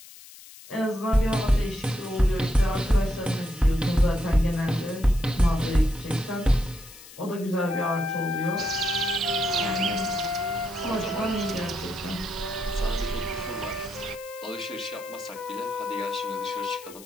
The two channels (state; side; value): noise; left; hiss, 18 dB below the sound